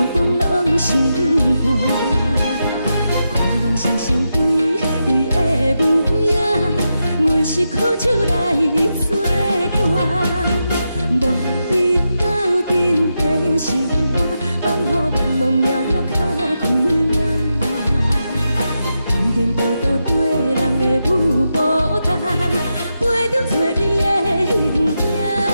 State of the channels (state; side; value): inverted; both; correlation -0.87